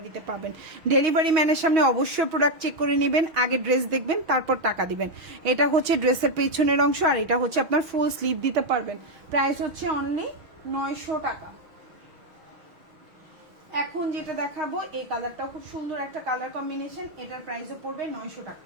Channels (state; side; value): late; left; 6.2 ms